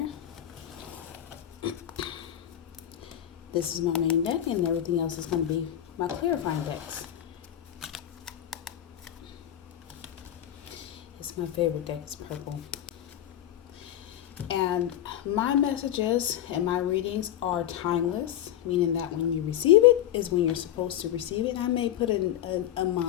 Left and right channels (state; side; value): quieter; right; 11.5 dB